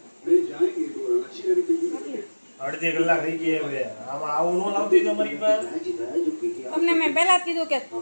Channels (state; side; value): inverted; both; correlation -1.00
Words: અડધી કલાક થઈ ગઈ હવે. આમાં આવું ન લાવતી તમારી પાસે. તમને મેં પહેલા જ કીધું કે